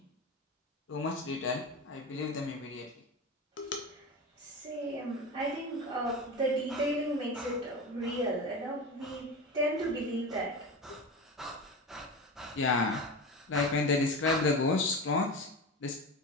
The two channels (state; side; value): normal; both; correlation 0.26